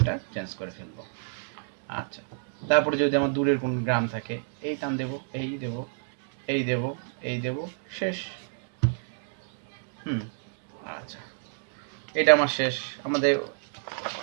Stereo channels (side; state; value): left; silent; digital silence